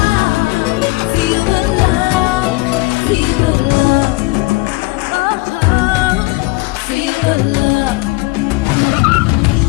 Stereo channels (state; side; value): quieter; right; 22.6 dB